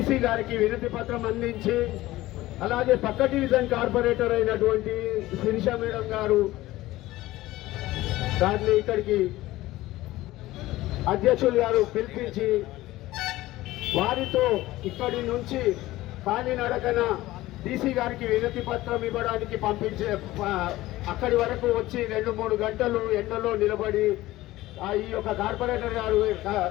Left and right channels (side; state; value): right; quieter; 17.1 dB